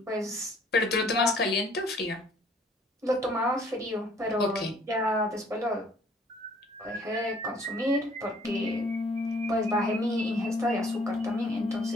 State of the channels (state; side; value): normal; both; correlation 0.58